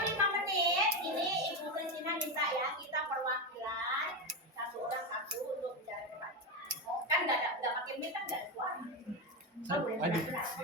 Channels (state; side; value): normal; both; correlation 0.13